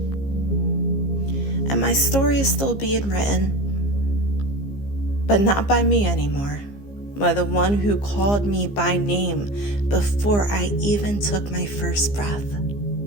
And my story is still being written, but not by me anymore, by the one who called me by name before I even took my first breath.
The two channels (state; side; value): late; right; 15 ms